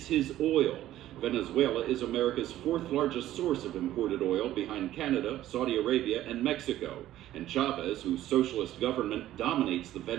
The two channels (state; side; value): quieter; left; 13.6 dB